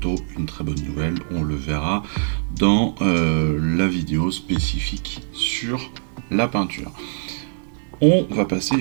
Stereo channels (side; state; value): left; silent; 63 dB below the other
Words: une très bonne nouvelle. On le verra dans la vidéo spécifique sur la peinture. On va passer